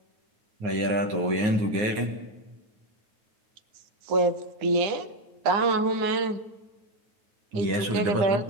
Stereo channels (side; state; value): left; late; 9.4 ms